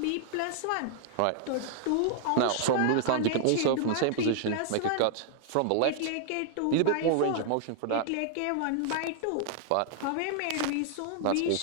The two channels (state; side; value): different; both; correlation -0.01